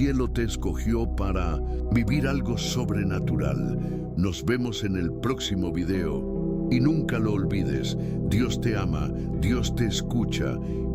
te escogió para vivir algo sobrenatural. Nos vemos en el próximo video. Y nunca lo olvides, Dios te ama, Dios te escucha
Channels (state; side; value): identical; both; correlation 1.00